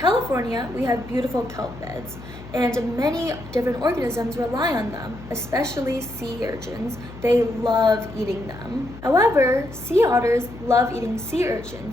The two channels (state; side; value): noise; left; hum, 15 dB below the sound